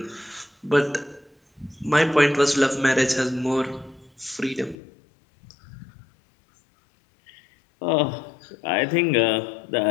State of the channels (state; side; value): drops out; right; at 4.8 s